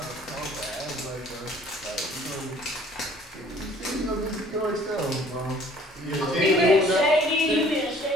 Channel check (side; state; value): both; normal; correlation 0.54